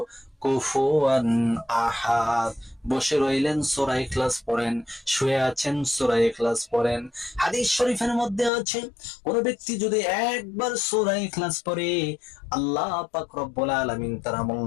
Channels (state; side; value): drops out; right; at 8.5 s